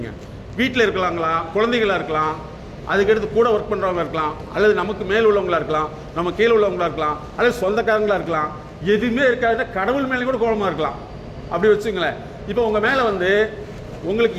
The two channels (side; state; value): both; identical; correlation 1.00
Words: வீட்டில் இருக்கலாங்களா, குழந்தைகளாக இருக்கலாம், அதுக்கடுத்து கூட ஒர்க் பண்ணுறவங்க இருக்கலாம், அல்லது நமக்கு மேல் உள்ளவங்களா இருக்கலாம், நம்ம கீழே உள்ளவங்களா இருக்கலாம், அல்லது சொந்தக்காரங்களா இருக்கலாம். எதுவுமே இருக்காது, கடவுள் மேலே கூட கோபமாக இருக்கலாம். அப்படி வச்சுங்களேன். இப்போ உங்கள் மேலே வந்து உங்களுக்கு